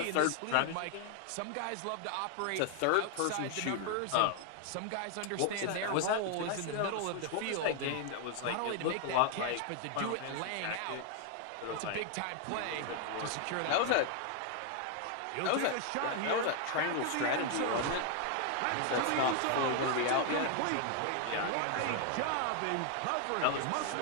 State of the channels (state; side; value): different; both; correlation 0.00